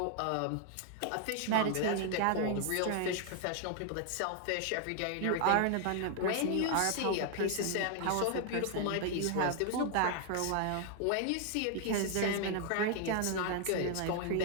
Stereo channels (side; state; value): both; different; correlation 0.00